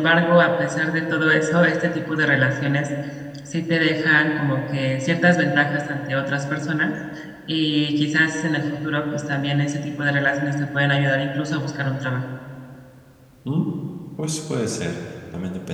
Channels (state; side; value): identical; both; correlation 1.00